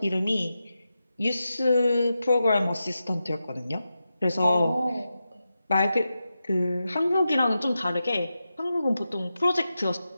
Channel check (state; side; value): inverted; both; correlation -0.90